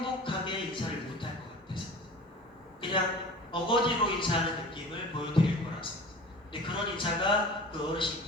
인사를 못할 것 같아서, 그냥 어거지로 인사하는 느낌을 보여드릴 거라서. 근데 그런 인사가 그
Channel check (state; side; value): normal; both; correlation 0.40